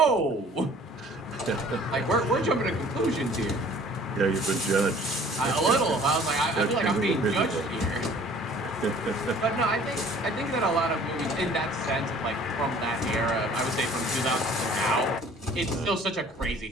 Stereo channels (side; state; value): both; normal; correlation 0.52